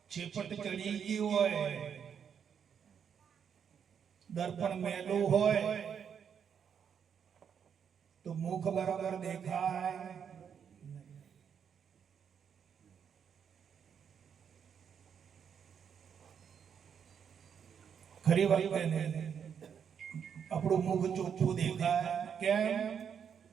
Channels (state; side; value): quieter; left; 7.6 dB